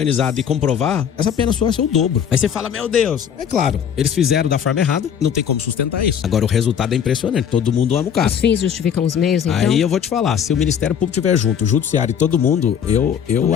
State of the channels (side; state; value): right; quieter; 8.2 dB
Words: e comprovar, essa pena sua é o dobro. Aí você fala, meu Deus. É claro, eles fizeram da forma errada, não tem como sustentar isso. Agora o resultado é impressionante, todo mundo ama o cara. Os fins justificam os meios, então? Aí eu vou te falar, se o Ministério Público estiver junto, o Judiciário e todo mundo, eu